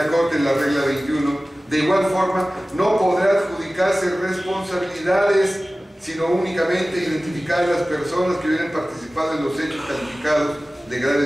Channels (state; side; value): normal; both; correlation 0.97